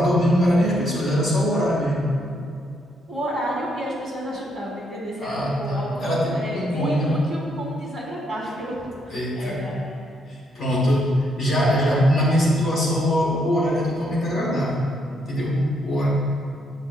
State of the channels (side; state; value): both; normal; correlation 0.74